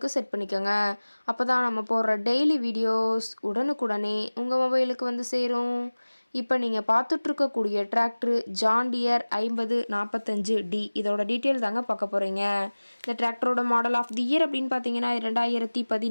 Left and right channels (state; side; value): inverted; both; correlation -1.00